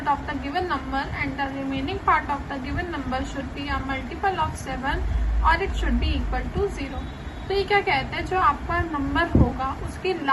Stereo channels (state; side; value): identical; both; correlation 1.00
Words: of the given number and the remaining part of the given number should be a multiple of 7 और it should be equal to 0। तो ये क्या कहते हैं, जो आपका नंबर होगा उसकी